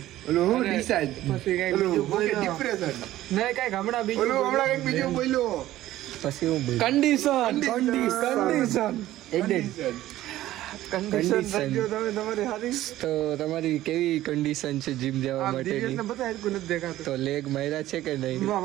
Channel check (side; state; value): left; quieter; 14.7 dB